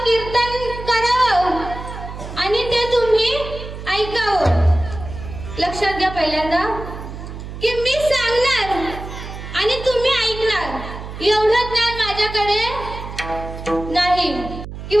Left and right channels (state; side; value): noise; right; hum, 10 dB below the sound